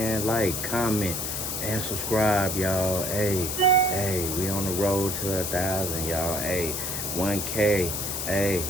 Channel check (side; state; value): left; noise; hiss, 3 dB below the sound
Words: like, comment, and subscribe, y'all. Hey, we on the road to 1,000, y'all. Hey, 1K, hey,